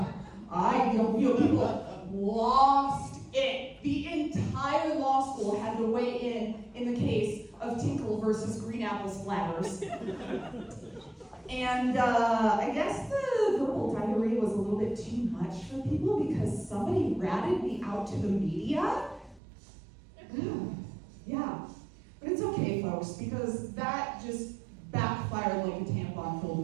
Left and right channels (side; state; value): left; drops out; at 19.4 s